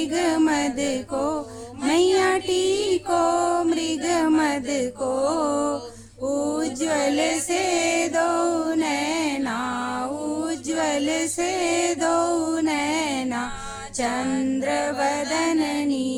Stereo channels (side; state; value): both; identical; correlation 1.00